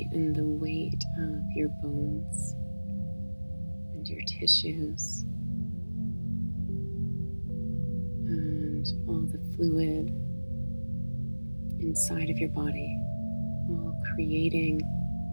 and the weight of your bones and your tissues and all the fluid inside of your body, all creating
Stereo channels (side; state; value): both; inverted; correlation -1.00